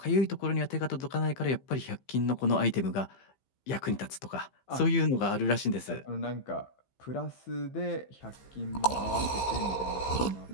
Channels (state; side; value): late; right; 15 ms